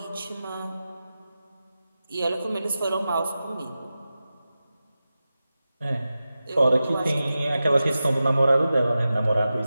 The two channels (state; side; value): inverted; both; correlation -0.93